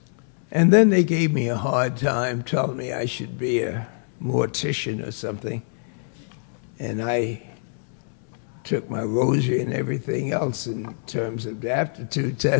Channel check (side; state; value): right; silent; 62 dB below the other